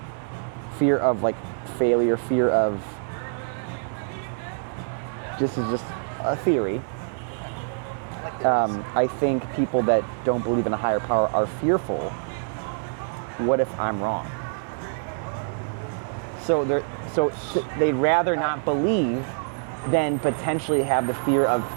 failure, fear of this is just a theory. Okay. I like theories. I think people that don't believe in a higher power are fearful. What if I'm wrong? So they'd rather not believe than potentially have the fear of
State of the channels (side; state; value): left; silent; digital silence